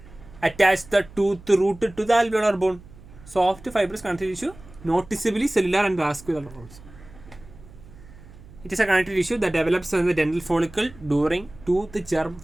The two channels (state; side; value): noise; right; hum, 20 dB below the sound